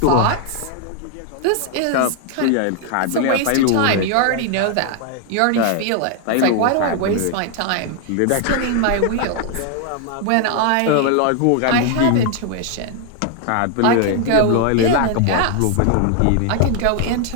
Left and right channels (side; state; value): both; different; correlation 0.00